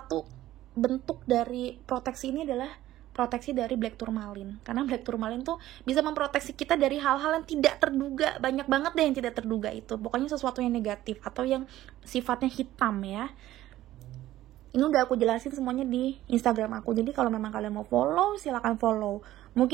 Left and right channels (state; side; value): quieter; left; 14.5 dB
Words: bentuk dari proteksi ini adalah proteksi dari Black Tourmaline. Karena Black Tourmaline tuh bisa memproteksi kita dari hal-hal yang tidak terduga. Banyak banget deh yang tidak terduga itu. Pokoknya sesuatu yang negatif atau yang sifatnya hitam ya. Ini udah aku jelasin semuanya di Instagram aku. Jadi kalau memang kalian mau follow, silakan follow.